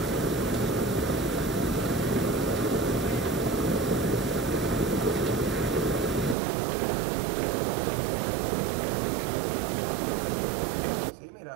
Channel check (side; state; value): left; drops out; at 6.4 s